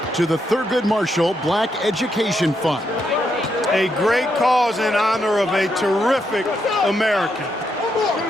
to the Thurgood Marshall Black Education Fund. A great cause in honor of a terrific American.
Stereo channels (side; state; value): both; normal; correlation 0.80